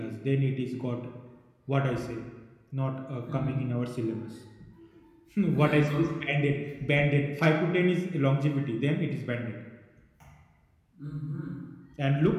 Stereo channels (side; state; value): both; identical; correlation 1.00